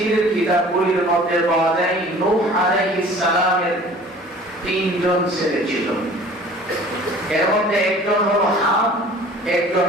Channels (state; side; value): normal; both; correlation 0.47